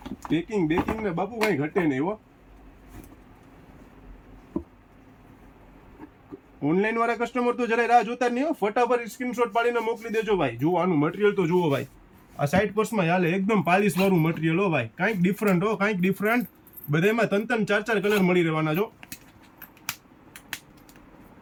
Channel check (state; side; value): identical; both; correlation 1.00